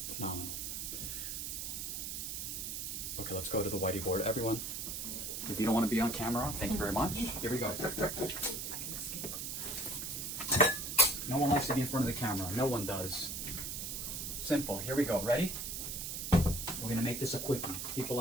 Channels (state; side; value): noise; right; hiss, 4 dB below the sound